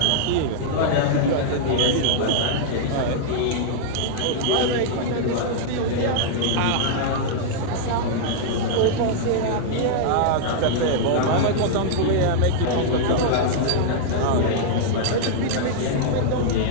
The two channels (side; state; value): both; different; correlation -0.01